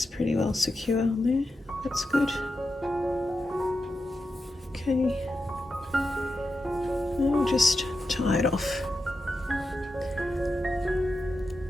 pretty well secure on there. That's good. Okay. I'll just tie it off.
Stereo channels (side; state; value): both; normal; correlation 0.89